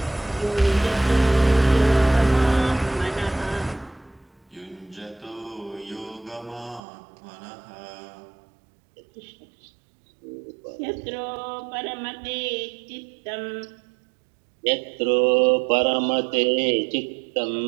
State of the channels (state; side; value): drops out; left; at 6.8 s